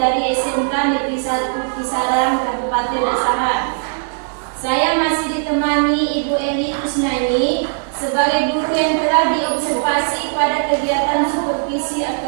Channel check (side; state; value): left; silent; digital silence